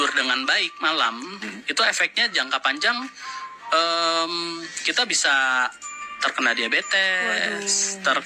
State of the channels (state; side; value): identical; both; correlation 1.00